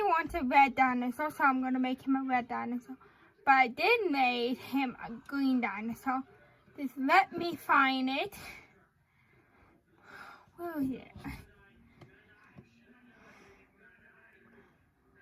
wants a red dinosaur, so I'm going to make him a red dinosaur. But I did make him a green dinosaur. Just let me find it. Where is it?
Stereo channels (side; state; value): both; identical; correlation 1.00